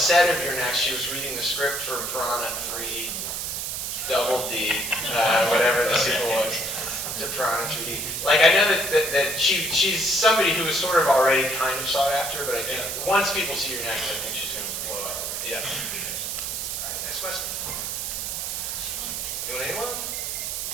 of Your Next, she was reading the script for Piranha 3 Double D, whatever the sequel was, to Piranha 3D. Like, I know that she's somebody who was sort of already kind of sought after, but I think once people see Your Next, I think she's going to blow up. Yeah. All right, next question. Anyone?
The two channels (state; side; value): noise; right; hiss, 3 dB below the sound